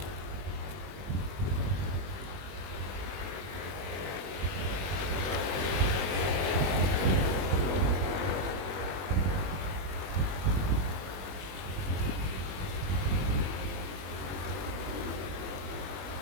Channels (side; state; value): left; late; 21 ms